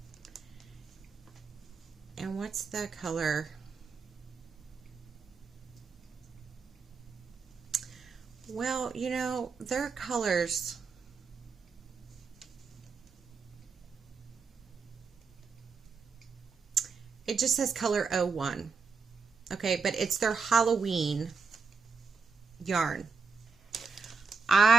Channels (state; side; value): quieter; left; 5.0 dB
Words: And what's the color? Well, you know, their colors. It just says color 01. Okay, but it's their Halloween yarn.